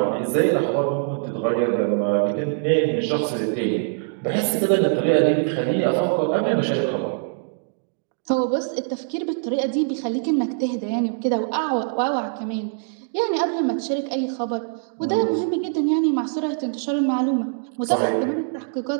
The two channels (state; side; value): silent; left; digital silence